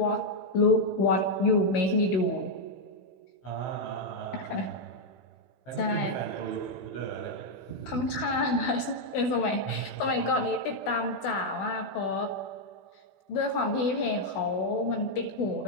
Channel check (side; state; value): right; late; 16 ms